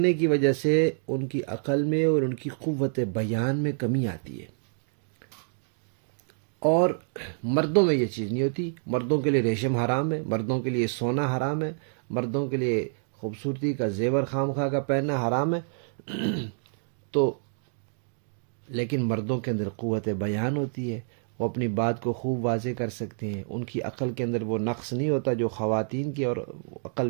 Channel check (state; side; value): silent; left; digital silence